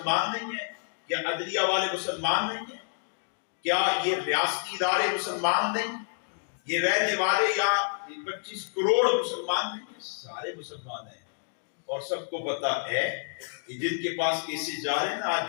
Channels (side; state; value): right; silent; digital silence